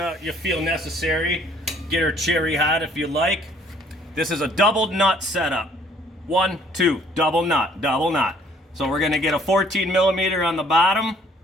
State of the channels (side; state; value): both; normal; correlation 0.59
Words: feel necessary. Get her cherry hot if you like. This is a double nut setup. 1, 2, double nut, double nut. So we're gonna get a 14 millimeter on the bottom